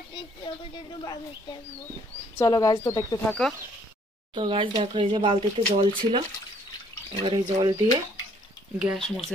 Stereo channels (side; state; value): both; normal; correlation 0.63